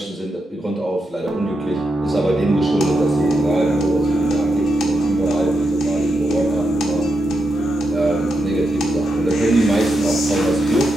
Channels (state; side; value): normal; both; correlation 0.85